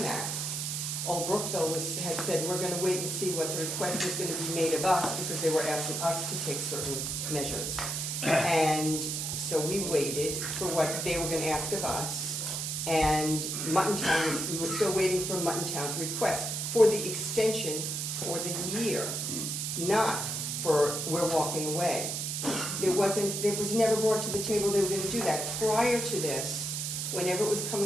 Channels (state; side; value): noise; right; hiss, 2 dB below the sound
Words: that. Old Brookville had said, we're gonna wait and see what the request is gonna be made of us, because they were asking us to take certain measures. And so we waited for what they were gonna ask of us, and we were still waiting for Muttontown's request for the extension for the year, not for we're walking away. It was never brought to the table they were gonna do that. Prior to this, whenever it was